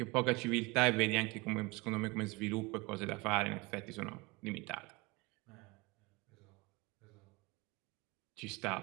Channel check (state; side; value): quieter; left; 24.6 dB